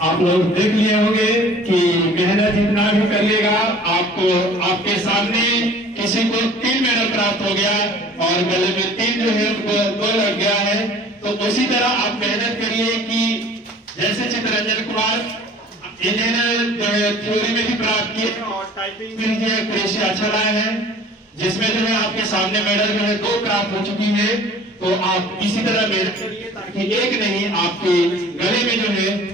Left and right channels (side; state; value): both; normal; correlation 0.48